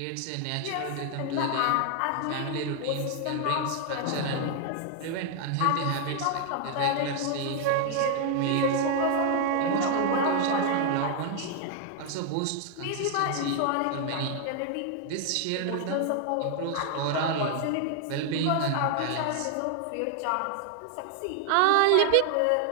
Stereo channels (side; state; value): both; different; correlation 0.00